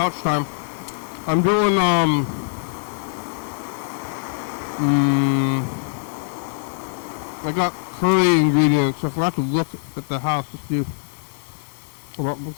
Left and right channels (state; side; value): silent; right; 64 dB below the other